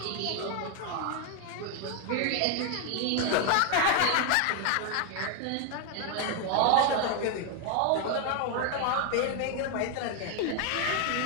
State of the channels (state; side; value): different; both; correlation 0.01